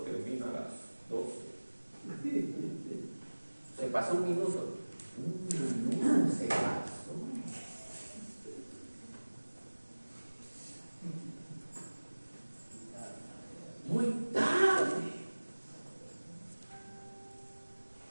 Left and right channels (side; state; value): both; inverted; correlation -1.00